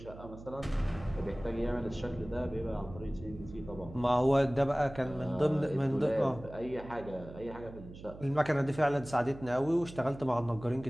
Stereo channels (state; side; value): noise; right; hum, 15 dB below the sound